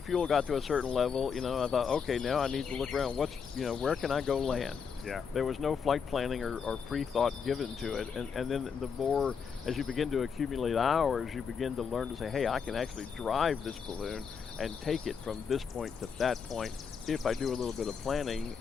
got to a certain level, I thought, okay, now I need to look around. Where can I go land? Yeah. There was no flight planning or pre-thought given to it. And then the more, as you begin to accumulate hours, you begin to learn to say, hey, I can actually drive this balloon and take it from this point to that point if I do a little bit of planning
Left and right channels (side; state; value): right; quieter; 6.3 dB